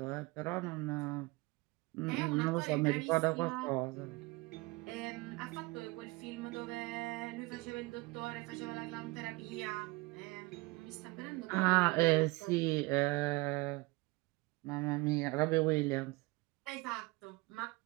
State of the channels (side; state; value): left; quieter; 23.8 dB